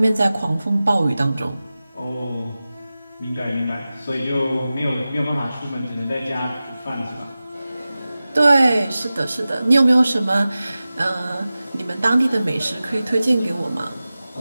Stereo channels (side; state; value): both; inverted; correlation -0.96